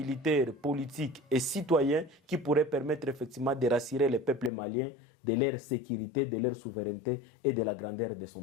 politique et citoyen qui pourrait permettre effectivement de rassurer le peuple malien de leur sécurité, de leur souveraineté et de la grandeur de son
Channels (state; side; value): drops out; right; at 4.5 s